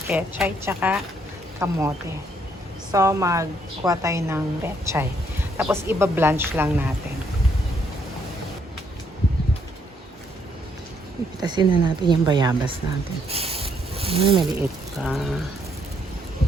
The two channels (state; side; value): normal; both; correlation 0.71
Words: pechay tsaka kamote. So, magkuha tayo ng pechay. Tapos, iba-blanch lang natin. Ipitasin na natin yung bayabas natin. Maliit pa.